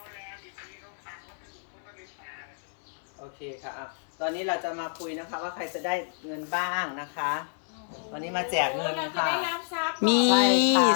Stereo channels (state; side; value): silent; right; digital silence